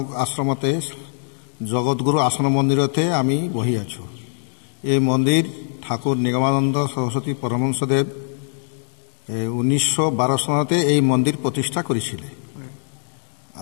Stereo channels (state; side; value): silent; right; 57 dB below the other